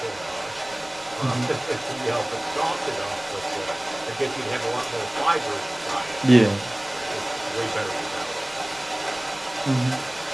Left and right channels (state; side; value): noise; left; rumble, 24 dB below the sound